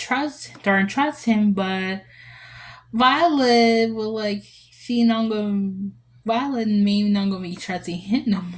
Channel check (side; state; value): both; identical; correlation 1.00